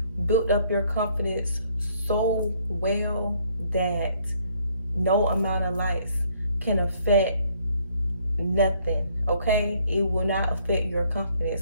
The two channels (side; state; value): both; inverted; correlation -0.65